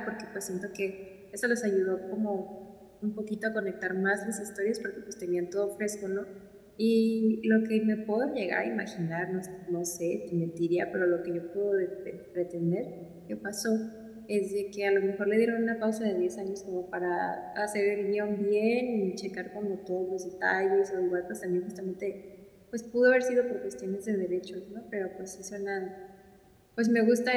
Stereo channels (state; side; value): identical; both; correlation 1.00